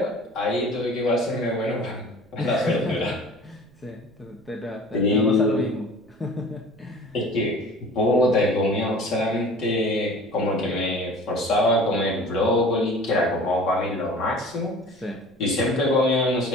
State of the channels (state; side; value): noise; right; rumble, 29 dB below the sound